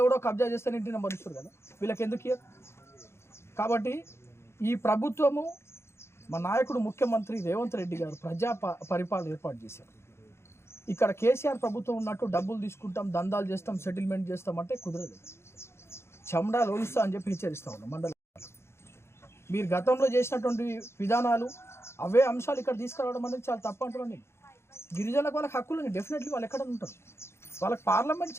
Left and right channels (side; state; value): right; late; 0.12 ms